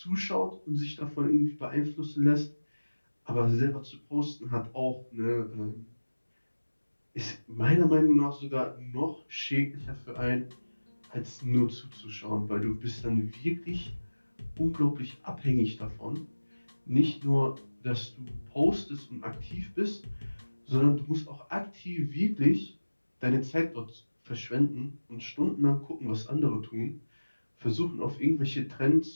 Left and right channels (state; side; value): inverted; both; correlation -1.00